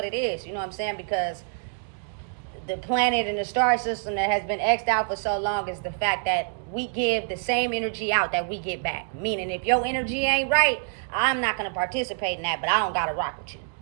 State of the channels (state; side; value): silent; left; 58 dB below the other